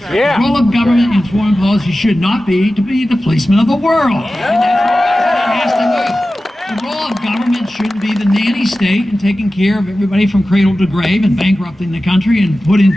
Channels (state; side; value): normal; both; correlation 0.95